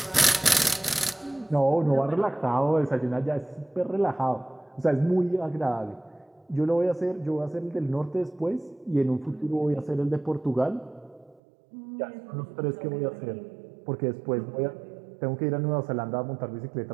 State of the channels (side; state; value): left; drops out; at 11.4 s